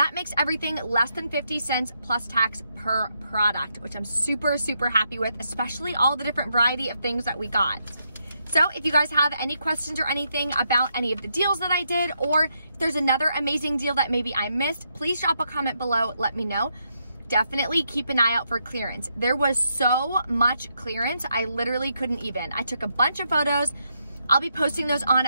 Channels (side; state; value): both; inverted; correlation -0.80